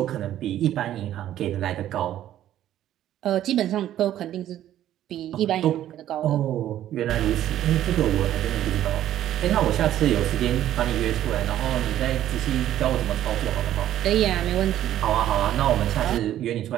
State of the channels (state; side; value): quieter; left; 12.2 dB